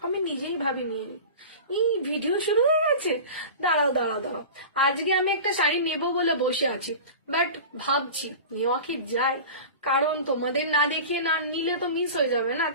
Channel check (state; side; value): inverted; both; correlation -0.34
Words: আমি নিজেই ভাবিনি। এই ভিডিও শুরু হয়ে গেছে। দাঁড়াও দাঁড়াও দাঁড়াও, আজকে আমি একটা শাড়ি নেব বলে বসে আছি, বাট ভাবছি নেওয়া কি যায়, কারণ তোমাদের না দেখিয়ে না নিলে তো মিস হয়ে যাবে না।